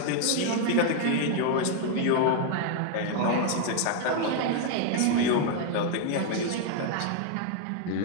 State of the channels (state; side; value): different; both; correlation 0.00